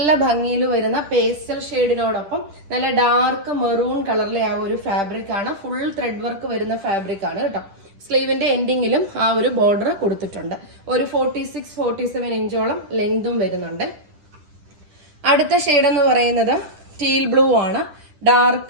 ഭംഗിയിൽ വരുന്ന പേസ്റ്റൽ ഷെയ്ഡിനോടൊപ്പം നല്ല ഡാർക്ക് മെറൂൺ കളറിലെ ആ ഒരു ഫാബ്രിക് ആണ്. ഫുൾ ത്രെഡ് വർക്ക് വരുന്ന ഫാബ്രിക് ആണ് കേട്ടോ. സ്ലീവിന്റെ എൻഡിങ്ങിലും ആ ഒരു ബോർഡർ കൊടുത്തിട്ടുണ്ട്. ഒരു 46-47 ഇഞ്ചോളം ലെങ്തും വരുന്നുണ്ട്. അടുത്ത ഷെയ്ഡ് എന്ന് പറയുന്നത് ടീൽ ബ്ലൂ ആണ്.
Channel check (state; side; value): late; left; 10 ms